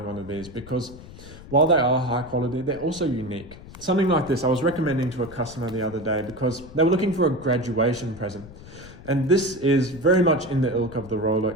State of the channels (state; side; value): noise; left; rumble, 17 dB below the sound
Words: one of these, because while they are high quality, they're also unique. Something like this I was recommending to a customer the other day because they were looking for a graduation present. And this is very much in the ilk of the